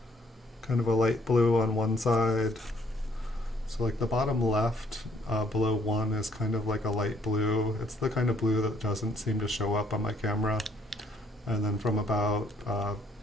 Kind of a light blue on one side. So like the bottom left below 1 is kind of like a light blue. It's the kind of blue that doesn't seem to show up on my camera. And then from about,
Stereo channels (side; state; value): both; normal; correlation 0.66